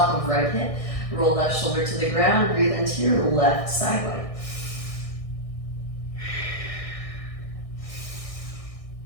of right hip. Roll left shoulder to the ground, breathe into your left side body.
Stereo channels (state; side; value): late; right; 1.6 ms